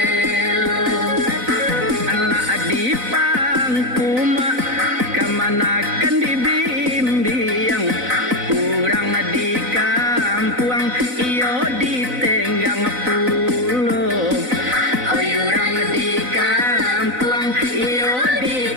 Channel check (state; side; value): late; left; 4.0 ms